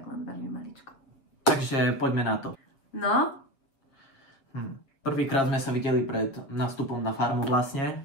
len veľmi maličko. Takže poďme na to. No? Prvýkrát sme sa videli pred nástupom na farmu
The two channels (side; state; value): right; late; 7.3 ms